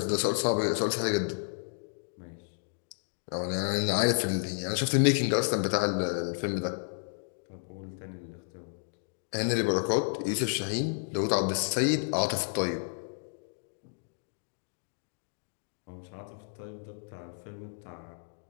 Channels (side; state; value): right; silent; digital silence